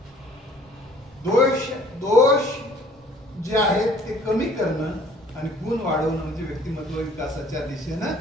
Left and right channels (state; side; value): normal; both; correlation 0.55